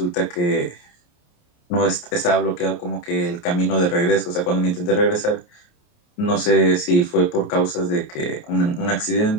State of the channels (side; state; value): right; late; 28 ms